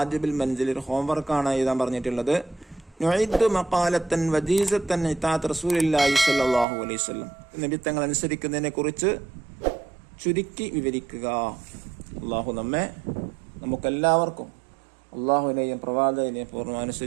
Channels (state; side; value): drops out; left; at 6.7 s